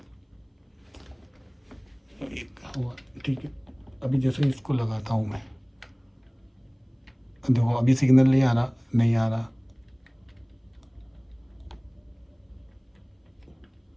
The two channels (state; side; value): identical; both; correlation 1.00